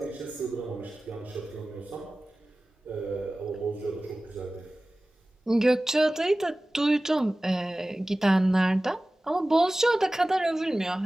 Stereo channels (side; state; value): both; normal; correlation 0.97